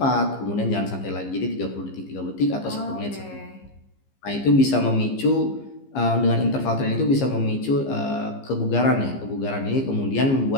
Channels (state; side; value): late; right; 15 ms